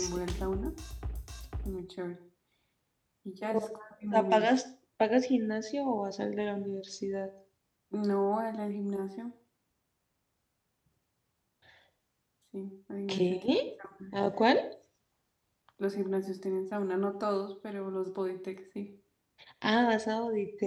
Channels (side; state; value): both; identical; correlation 1.00